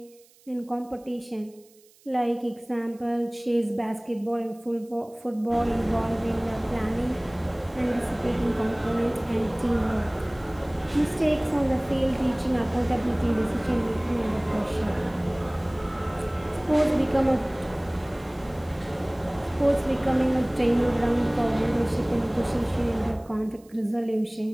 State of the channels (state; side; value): noise; right; hiss, 29 dB below the sound